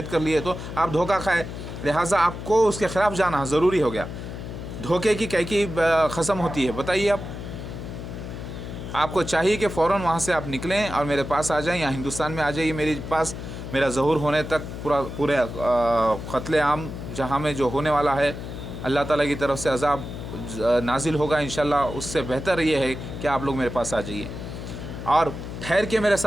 कर लिए, तो आप धोखा खाए, लिहाजा आपको उसके ख़िलाफ़ जाना ज़रूरी हो गया। धोखे की कैकी ख़सम होती है, बताइए आपको चाहिए कि फ़ौरन वहाँ से आप निकलें और मेरे पास आ जाएं, या हिंदुस्तान में आ जाइए मेरे पास। मेरा ज़हूर होने तक पूरे क़त्ल आम जहाँ में जो होने वाला है, अल्लाह ताला की तरफ से अज़ाब नाजिल होगा इंशाल्लाह। उससे बेहतर ये है कि आप लोग मेरे पास आ जाइए और ठहर के मेरे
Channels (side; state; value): left; noise; hum, 9 dB below the sound